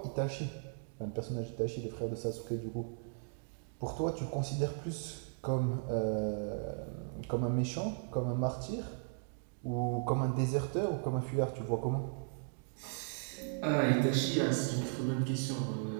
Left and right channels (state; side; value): silent; left; digital silence